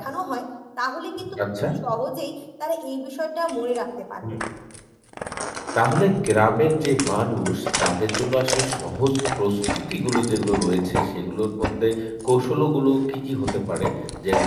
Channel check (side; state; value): both; identical; correlation 1.00